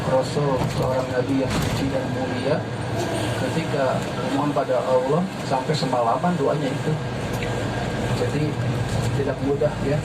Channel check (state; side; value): identical; both; correlation 1.00